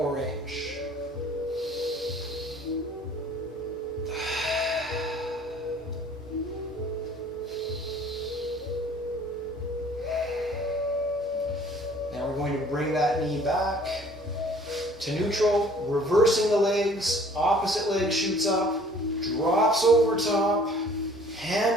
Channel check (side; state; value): both; normal; correlation 0.54